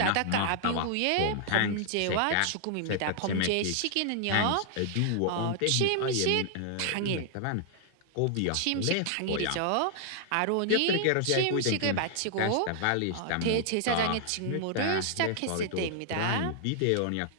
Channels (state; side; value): different; both; correlation -0.01